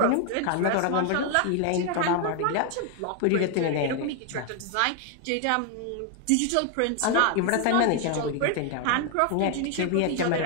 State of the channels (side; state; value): both; different; correlation 0.00